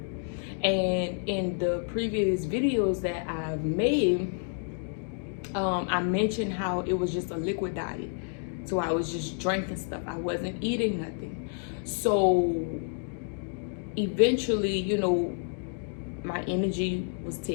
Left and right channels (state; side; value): silent; right; 58 dB below the other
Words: And in the previous videos that I've made, I mentioned how it was just a liquid diet. So I was just drinking stuff. I wasn't eating nothing. So eventually, my energy was